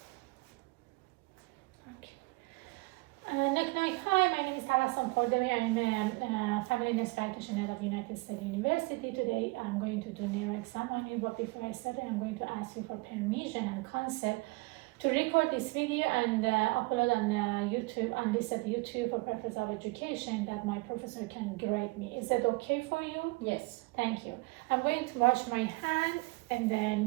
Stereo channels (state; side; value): quieter; left; 25.6 dB